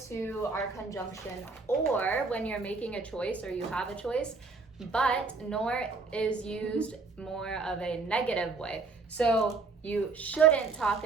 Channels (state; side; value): quieter; left; 4.2 dB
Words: to our conjunction or when you're making a choice or you have a choice, but nor is used more of a negative way. So you shouldn't talk